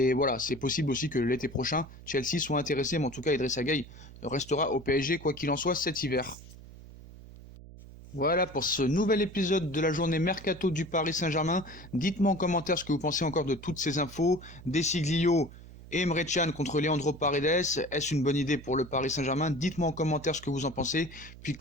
voilà, c'est possible aussi que l'été prochain, Chelsea soit intéressé. Mais en tout cas, Idrissa Gueye restera au PSG, quoi qu'il en soit, cet hiver. Voilà pour ce nouvel épisode de la journée Mercato du Paris Saint-Germain. Dites-moi en commentaire ce que vous pensez encore de toutes ces infos. Desiglio et Emre Can contre Leandro Paredes. Est-ce une bonne idée pour le Paris Saint-Germain? Dites-moi en commentaire ce que vous en pensez. Puis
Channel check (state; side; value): noise; right; hum, 17 dB below the sound